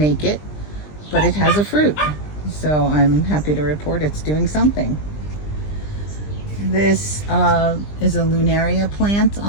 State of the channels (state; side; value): late; right; 20 ms